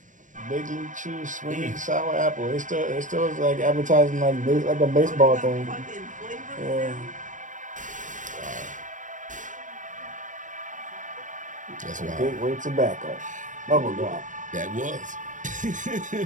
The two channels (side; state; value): left; late; 0.37 ms